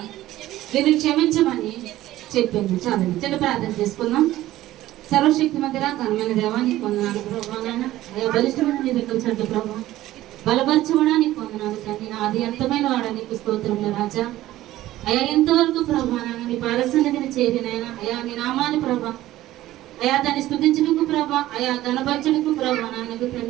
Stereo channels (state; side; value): quieter; left; 15.2 dB